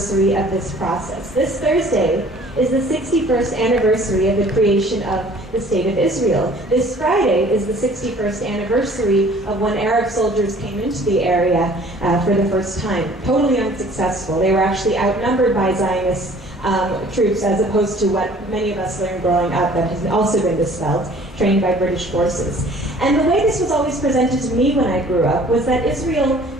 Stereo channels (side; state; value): both; normal; correlation 0.52